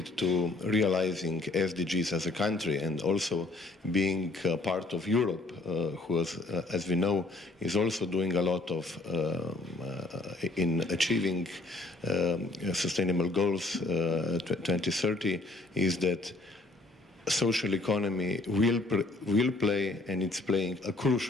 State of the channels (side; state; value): right; quieter; 3.2 dB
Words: to realizing SDGs as a country and also being part of Europe, who, as we know, is also doing a lot of in achieving sustainable goals 2030, is that social economy will play, and it's playing a